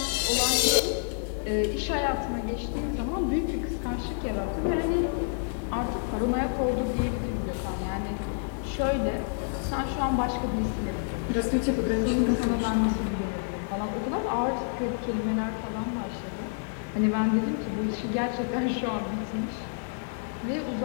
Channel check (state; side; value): silent; right; digital silence